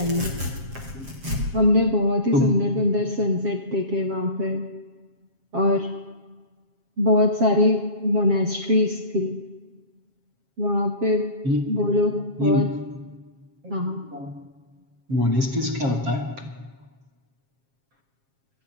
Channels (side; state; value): left; late; 7.4 ms